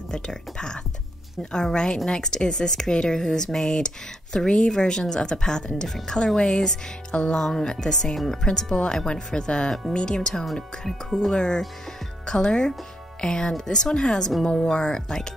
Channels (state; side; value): normal; both; correlation 0.77